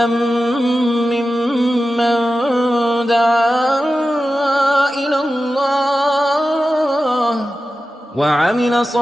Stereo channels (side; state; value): both; normal; correlation 0.93